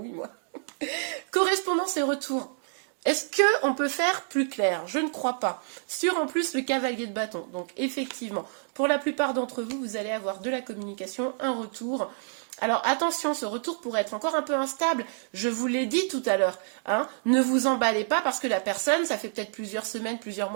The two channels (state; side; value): silent; left; 59 dB below the other